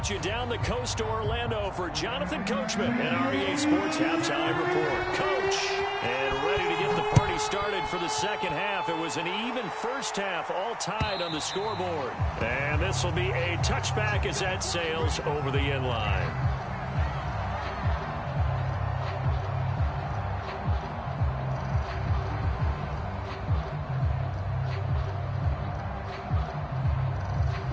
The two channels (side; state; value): both; identical; correlation 1.00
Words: you down the coast to Orlando for Jonathan Coachman and REA Sports Halftime Report. Coach, and ready to get the party started for the second half. It was an even first half, all tied on the scoreboard. And this will be a touchback as that sails over the end line.